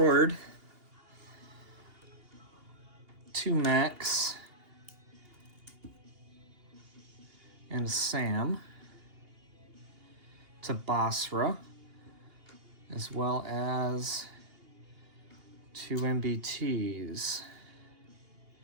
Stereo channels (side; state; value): left; late; 2.8 ms